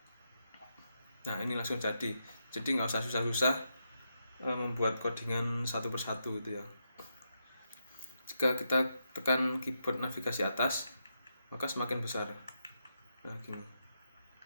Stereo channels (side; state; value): both; inverted; correlation -0.83